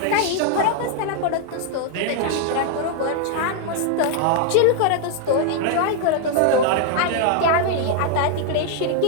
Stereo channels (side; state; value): both; different; correlation 0.00